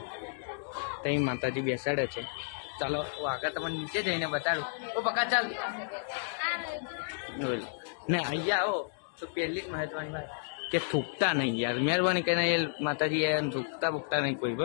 ત્યાં માતાજી બેસાડે છે. ચાલો આગળ તમને નીચે જઈને બતાડું. તો પક્કા ચાલ ને અહીંયા આવો તો પહેલી જ મહત્વની વાત કે થૂકતા નહીં યાર. મહેરબાની કરીને એ માતાજી એ થૂકતા નહીં કોઈ.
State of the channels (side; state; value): right; silent; digital silence